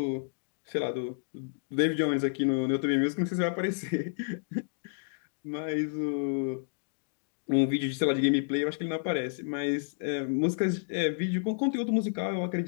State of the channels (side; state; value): right; silent; digital silence